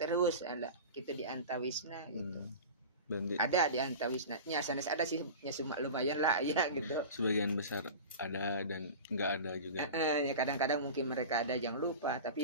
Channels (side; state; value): both; inverted; correlation -0.32